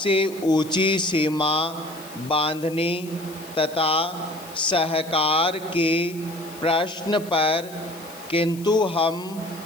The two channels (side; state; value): left; noise; hiss, 19 dB below the sound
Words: ऊंची सीमा बांधने तथा सहकार के प्रश्न पर, किंतु हम